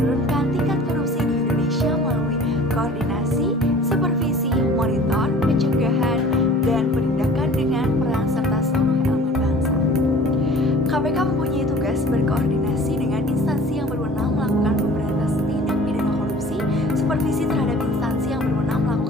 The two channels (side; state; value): both; normal; correlation 0.46